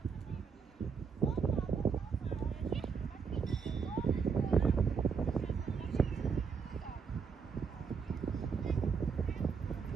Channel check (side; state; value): left; quieter; 6.0 dB